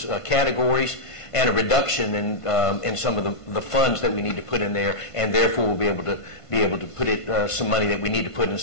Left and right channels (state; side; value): late; right; 1.5 ms